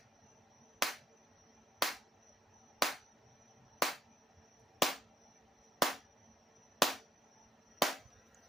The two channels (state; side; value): normal; both; correlation 0.72